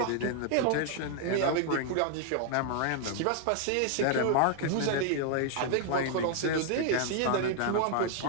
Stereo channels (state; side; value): different; both; correlation 0.00